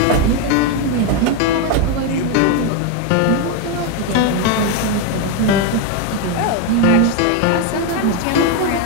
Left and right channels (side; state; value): both; different; correlation 0.02